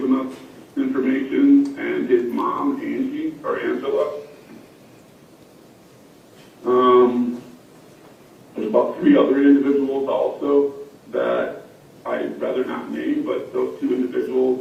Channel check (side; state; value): both; identical; correlation 1.00